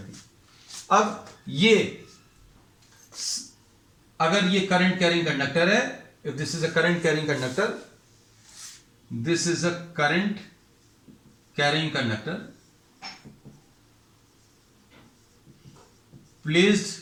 अब ये अगर ये करंट कैरिंग कंडक्टर है, if this is a current carrying conductor, this is a current carrying conductor placed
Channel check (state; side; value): identical; both; correlation 1.00